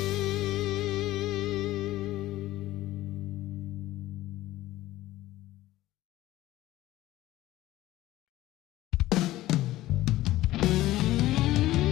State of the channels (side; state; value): right; quieter; 16.0 dB